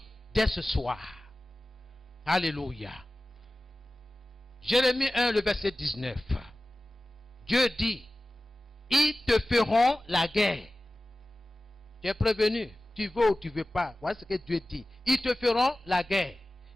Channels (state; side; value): normal; both; correlation 0.96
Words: dès ce soir. Alléluia. Jérémie 1, le verset 19. Dieu dit, ils te feront la guerre. Tu es prévenu. Tu veux ou tu ne veux pas. Voilà ce que Dieu dit. Ils te feront la guerre.